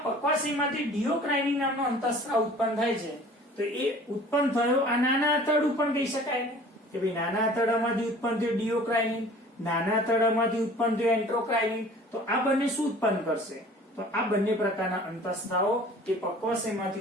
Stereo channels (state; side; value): normal; both; correlation 0.48